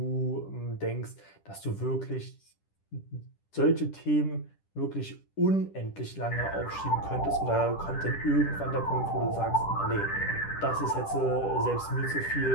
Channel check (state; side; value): late; right; 10 ms